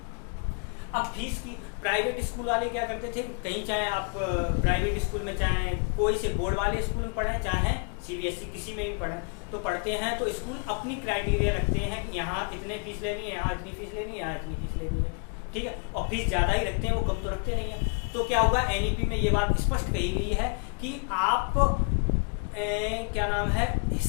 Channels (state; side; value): quieter; right; 39.2 dB